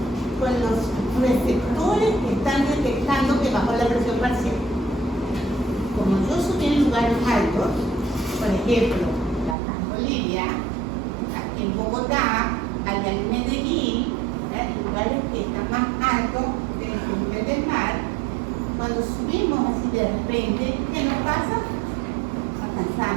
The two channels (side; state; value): left; drops out; at 9.6 s